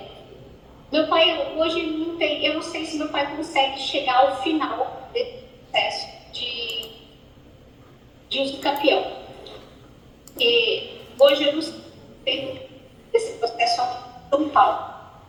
meu pai hoje não tem, eu não sei se meu pai consegue chegar ao final desse processo de uso capião. E hoje eu não sei desse processo aqui em São Paulo,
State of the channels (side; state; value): both; identical; correlation 1.00